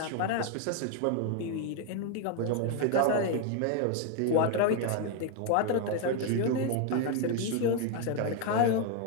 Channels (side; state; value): both; different; correlation 0.01